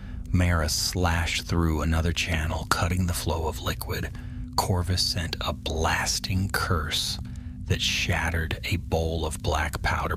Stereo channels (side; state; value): both; identical; correlation 1.00